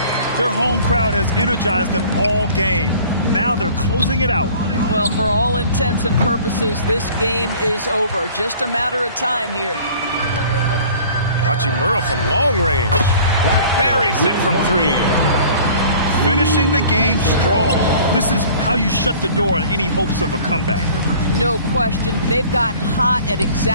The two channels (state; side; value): inverted; both; correlation -0.48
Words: Their home crowd has energized them all game. Now they're closing it out. Well, for all intents and purposes, this game is over. Just a matter of time here. Hachimura from long range. Buries it from 3. Finishing the game strong. This is how you shut the door on any hopes of a comeback. No question. They've gotten hot at